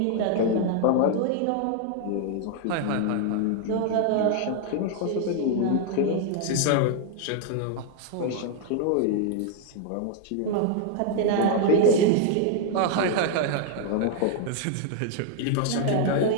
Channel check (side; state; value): both; different; correlation 0.00